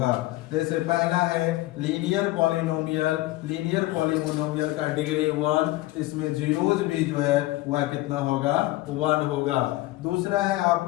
जैसे पहला है लीनियर पॉलिनोमियल, लीनियर पॉलिनोमियल का डिग्री 1, इसमें जीरोज भी जो है वह कितना होगा? 1 होगा। दूसरा है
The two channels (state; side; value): quieter; right; 18.2 dB